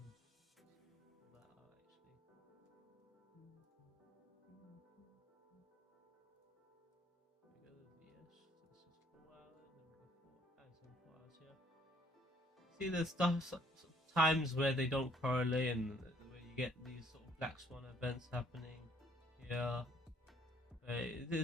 see there's times where they don't correlate and where you get these sort of black swan events happening here.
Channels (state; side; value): normal; both; correlation 0.63